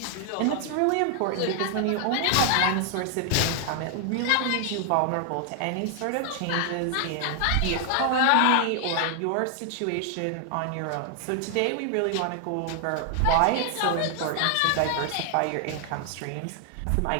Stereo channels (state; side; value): different; both; correlation 0.00